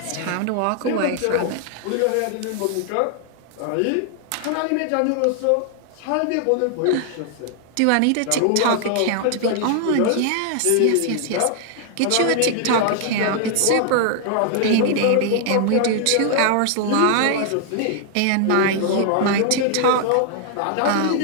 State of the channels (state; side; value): different; both; correlation 0.00